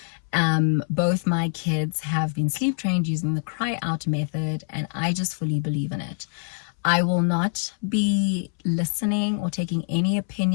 Both my kids have been sleep trained using the cry out method, and I just fully believe in it. I will not be listening or taking any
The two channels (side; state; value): right; silent; 62 dB below the other